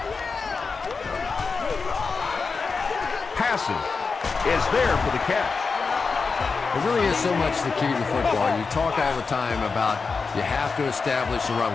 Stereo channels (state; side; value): quieter; right; 4.7 dB